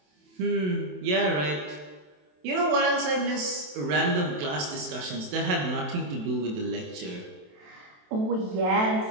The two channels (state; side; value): late; left; 27 ms